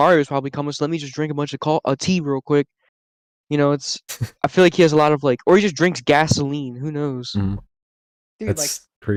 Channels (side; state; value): both; identical; correlation 1.00